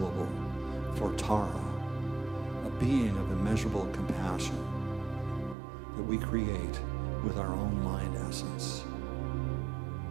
for Tara, a being of immeasurable compassion that we create with our own mind essence.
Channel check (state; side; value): drops out; left; at 5.6 s